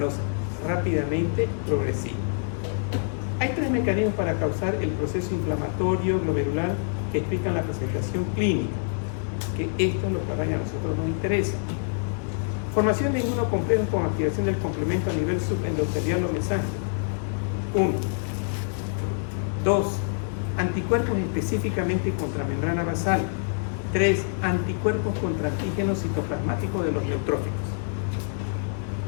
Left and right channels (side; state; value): right; silent; 61 dB below the other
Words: rápidamente progresiva. Hay tres mecanismos para causar el proceso inflamatorio glomerular que explican la presentación clínica, que esto es lo que a nosotros nos interesa. Formación de inmunocomplejos con activación del complemento a nivel subendotelial o mesángelo. 1. 2. Anticuerpos específicamente contra membrana basal. 3. Anticuerpos contra antígenos citoplasmáticos de los neutrófilos.